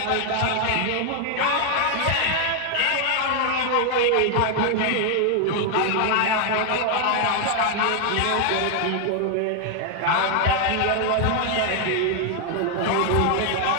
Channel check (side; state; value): both; different; correlation 0.00